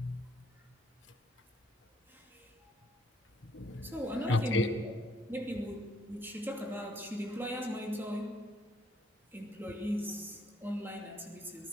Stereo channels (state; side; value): normal; both; correlation 0.68